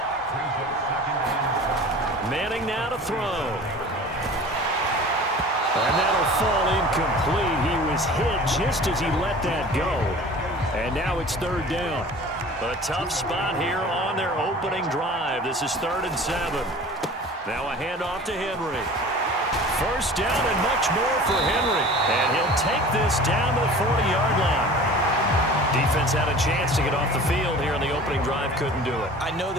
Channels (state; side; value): normal; both; correlation 0.42